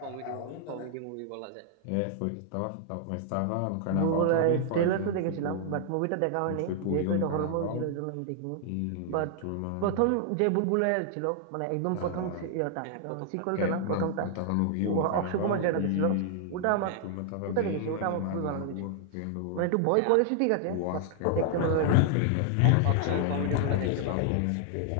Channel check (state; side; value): different; both; correlation 0.00